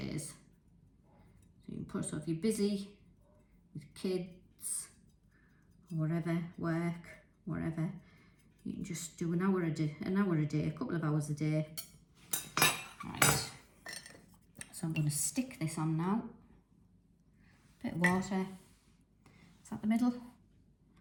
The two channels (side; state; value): both; identical; correlation 1.00